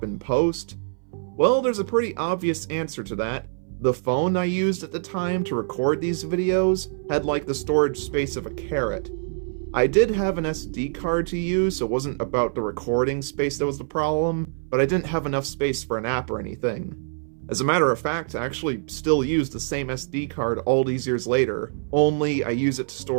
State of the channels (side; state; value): left; silent; 61 dB below the other